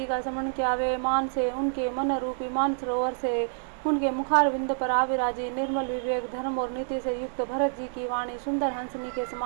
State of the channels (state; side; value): silent; left; 60 dB below the other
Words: का स्मरण किया। वे मान से उनके मन रूपी मान सरोवर से उनके मुखार बिंद पर आविराजी। निर्मल विवेक धर्म और नीति से युक्त भरत जी की वाणी सुंदर हंसनी के